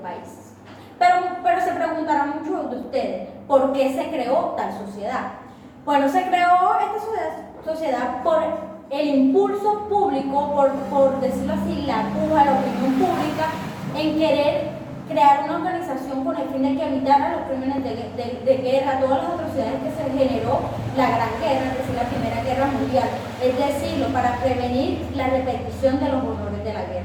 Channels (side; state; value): both; identical; correlation 1.00